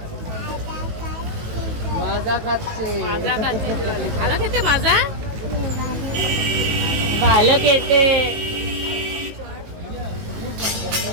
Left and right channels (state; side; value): late; left; 18 ms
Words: মাজা খাচ্ছে। মাজা খাচ্ছে জল। ভালো খেতে মাজা? ভালো খেতে।